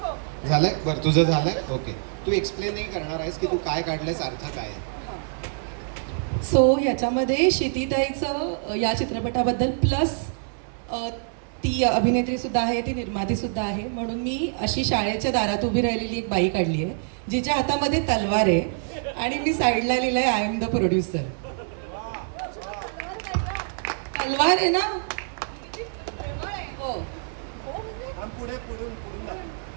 झालंय? बरं, तुझं झालंय. ओके, तू एक्सप्लेन नाही करणार आहेस की तू काय काढलंयस, अर्थ काय आहे? सो ह्याच्यामध्ये क्षितिताईचं या चित्रपटाबद्दल प्लस ती अभिनेत्रीसुद्धा आहे, ती निर्मातीसुद्धा आहे, म्हणून मी अशी शाळेच्या दारात उभी राहिलेली एक बाई काढली आहे जिच्या हातामध्ये तलवार आहे आणि मी साईडला लिहिलं आहे आय एम द प्रोड्युसर. तलवार आहे ना. हो, पुढे पुढून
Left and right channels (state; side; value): silent; left; 61 dB below the other